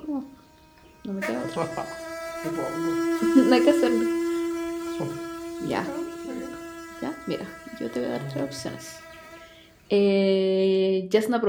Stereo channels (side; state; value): both; identical; correlation 1.00